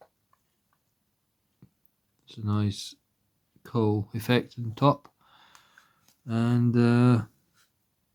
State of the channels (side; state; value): both; identical; correlation 1.00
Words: It's a nice coal effect on top, and